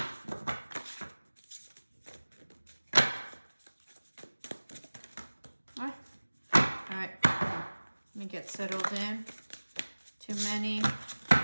All right, let me get settled in. Too many.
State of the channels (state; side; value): inverted; both; correlation -1.00